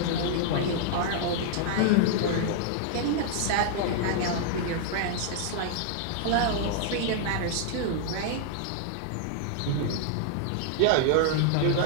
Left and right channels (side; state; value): both; different; correlation -0.01